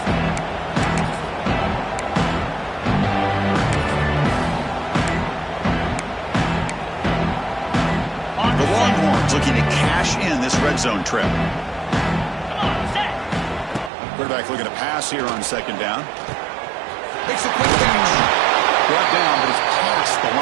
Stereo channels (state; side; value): drops out; left; at 13.9 s